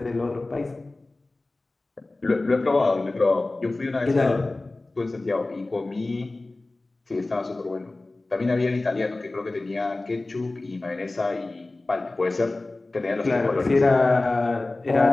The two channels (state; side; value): quieter; right; 3.0 dB